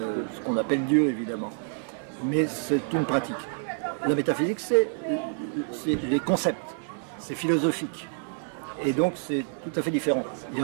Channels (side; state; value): left; silent; 60 dB below the other